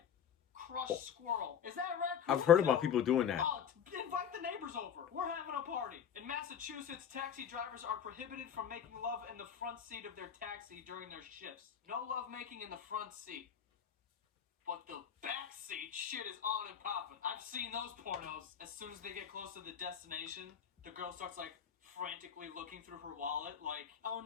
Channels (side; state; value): right; quieter; 8.4 dB